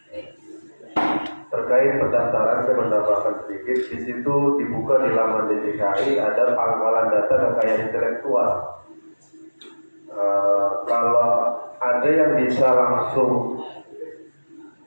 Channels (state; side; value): inverted; both; correlation -1.00